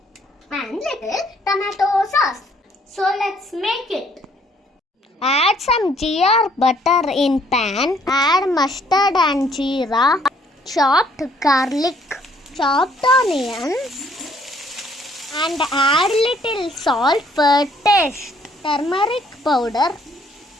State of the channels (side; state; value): both; normal; correlation 0.64